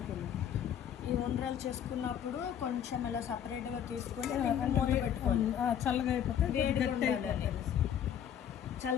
ఈ ఉండ్రాలు చేసుకున్నప్పుడు కొంచెం ఇలా సపరేట్గా తీసుకొని మూత పెట్టుకోవాలి. చల్లగా అయిపోతే వేడిగా ఉండాలని.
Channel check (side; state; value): right; quieter; 9.3 dB